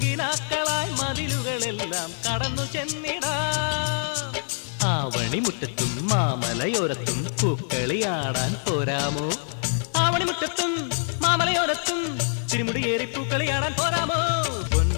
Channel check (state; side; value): silent; right; digital silence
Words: മതിലുകളെല്ലാം കടന്നു ചെന്നിടാം ആവണിമുറ്റത്തും മാമലയോരത്തും പൂക്കളിയാടാൻ പോരാമോ ആവണിമുറ്റത്തും മാമലയോരത്തും തിരുമുടിയേറി പൂക്കളിയാടാൻ പോരാമോ